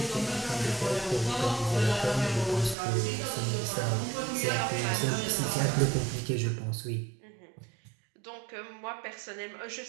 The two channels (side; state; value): left; drops out; at 2.8 s